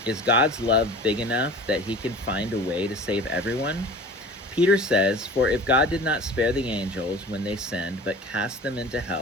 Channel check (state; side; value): normal; both; correlation 0.40